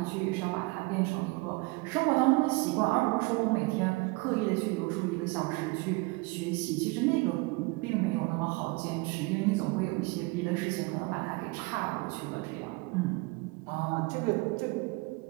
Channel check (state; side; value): quieter; left; 25.5 dB